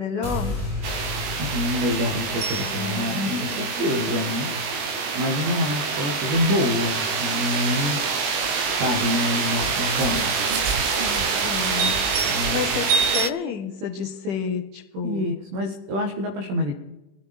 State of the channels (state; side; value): late; left; 21 ms